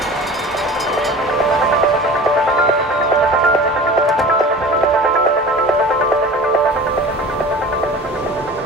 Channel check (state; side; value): normal; both; correlation 0.39